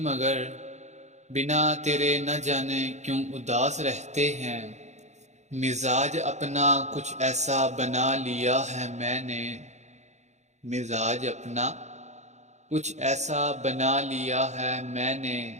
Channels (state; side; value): late; left; 0.33 ms